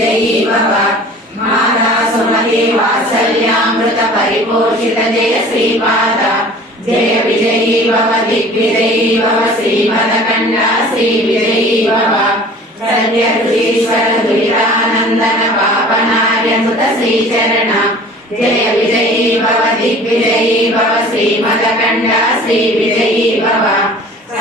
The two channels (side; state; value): both; normal; correlation 0.45